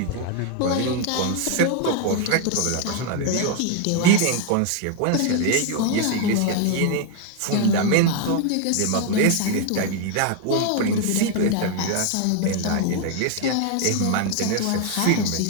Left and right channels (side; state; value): both; different; correlation 0.01